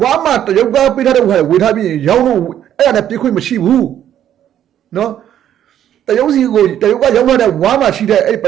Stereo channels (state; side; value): quieter; left; 10.7 dB